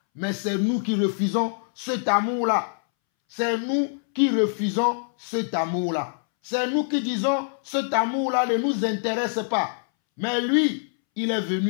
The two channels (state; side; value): silent; right; 62 dB below the other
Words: Mais c'est nous qui refusons cet amour-là. C'est nous qui refusons cet amour-là. C'est nous qui disons, cet amour-là ne nous intéresse pas. Mais lui, il est